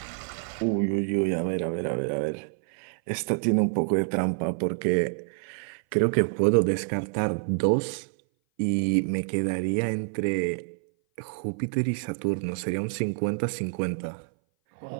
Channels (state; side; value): silent; left; 58 dB below the other